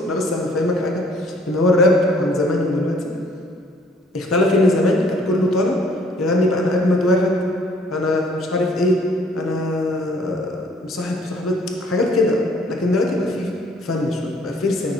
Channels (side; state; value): both; normal; correlation 0.59